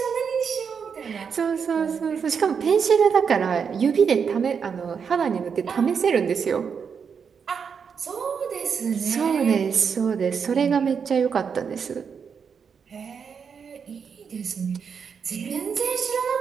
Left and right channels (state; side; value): quieter; left; 6.5 dB